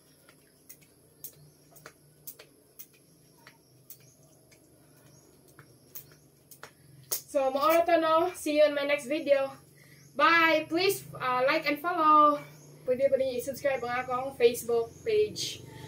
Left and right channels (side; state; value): both; identical; correlation 1.00